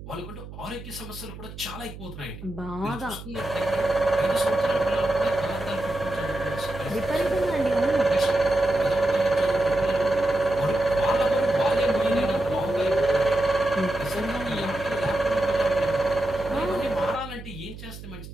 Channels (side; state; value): right; noise; hum, 13 dB below the sound